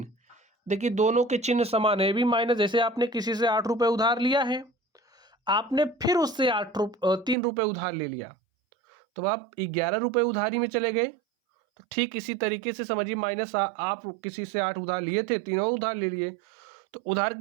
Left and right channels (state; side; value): drops out; left; at 7.4 s